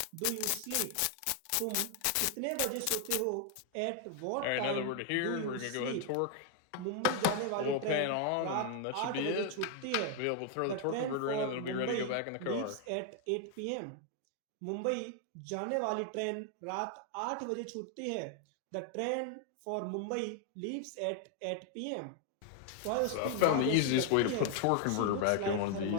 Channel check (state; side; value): different; both; correlation 0.00